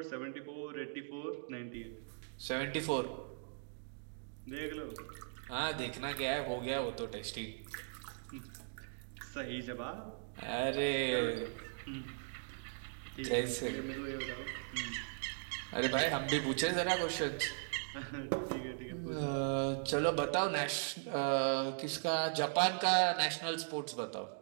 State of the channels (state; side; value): silent; left; digital silence